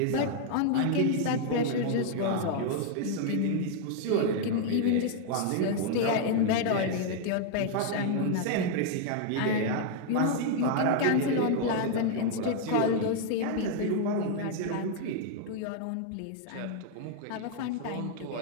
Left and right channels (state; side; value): different; both; correlation 0.00